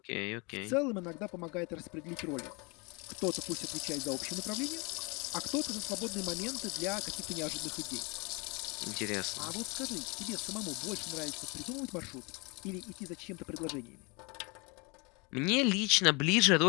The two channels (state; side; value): quieter; right; 29.2 dB